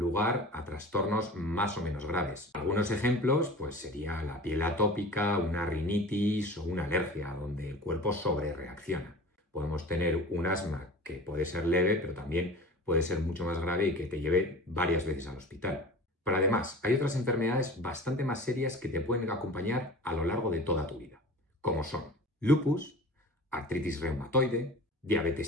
a trastornos más o menos graves. Algunos ejemplos pues sería la piel atópica, una rinitis o una alergia, donde el cuerpo sobrereacciona. Podemos tener un asma que puede ser leve, pero también puede ser mucho más grave y que te lleve varias veces al hospital. Pero además, hay otras enfermedades bastante más serias que te pueden acompañar a lo largo de toda tu vida, como son lupus, artritis reumatoide,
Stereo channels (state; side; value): normal; both; correlation 0.38